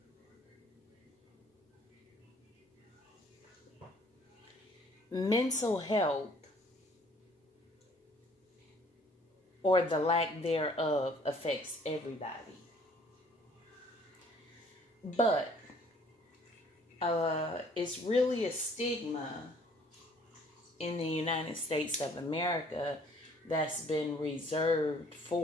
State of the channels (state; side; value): normal; both; correlation 0.58